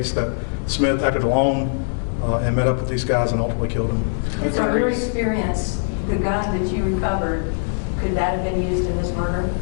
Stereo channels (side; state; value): right; silent; digital silence